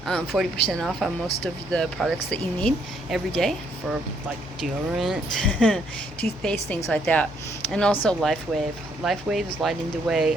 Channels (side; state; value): both; normal; correlation 0.70